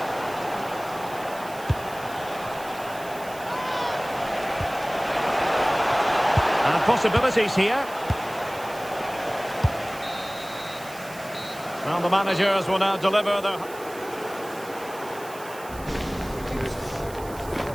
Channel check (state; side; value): noise; right; hiss, 18 dB below the sound